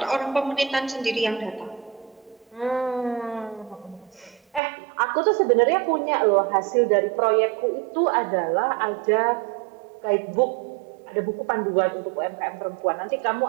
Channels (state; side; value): drops out; left; at 4.6 s